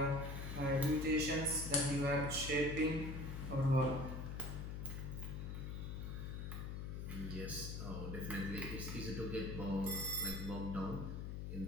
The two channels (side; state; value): left; noise; hum, 4 dB below the sound